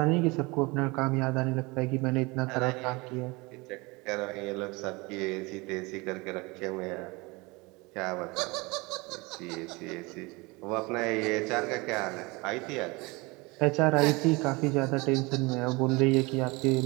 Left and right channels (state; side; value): quieter; left; 25.2 dB